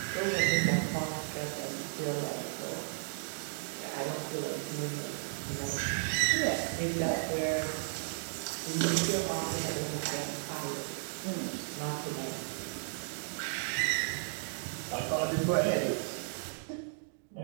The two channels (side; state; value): left; silent; digital silence